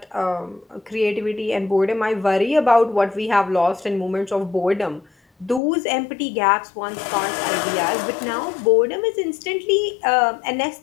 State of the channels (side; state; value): right; drops out; at 5.6 s